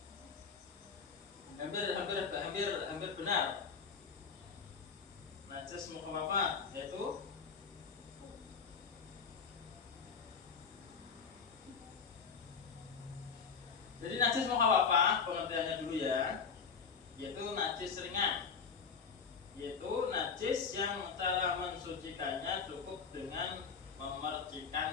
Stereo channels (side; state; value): right; quieter; 5.9 dB